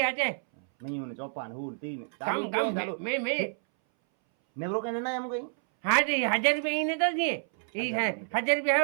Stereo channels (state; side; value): silent; left; 58 dB below the other